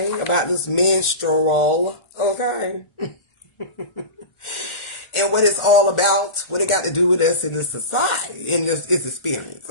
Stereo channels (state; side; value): late; right; 1.4 ms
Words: About this menstrual, okay? And what it's all about, what it got to do with us in this society, in this experience,